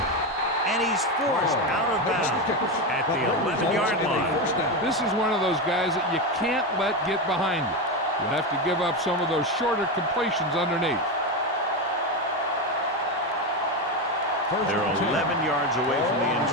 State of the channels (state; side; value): normal; both; correlation 0.14